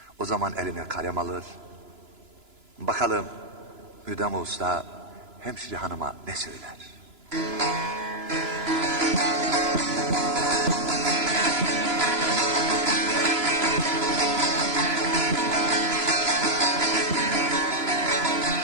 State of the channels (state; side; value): late; left; 3.0 ms